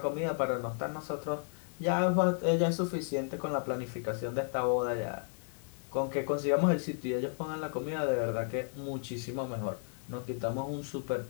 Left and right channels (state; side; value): silent; right; 55 dB below the other